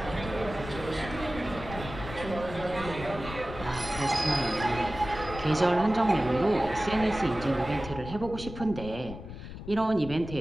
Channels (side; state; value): left; noise; rumble, 11 dB below the sound